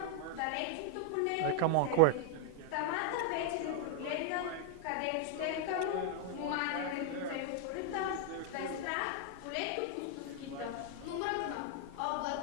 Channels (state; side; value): different; both; correlation 0.00